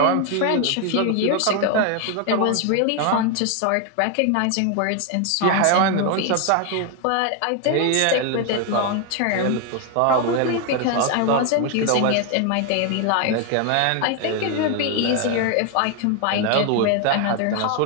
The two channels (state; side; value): different; both; correlation 0.01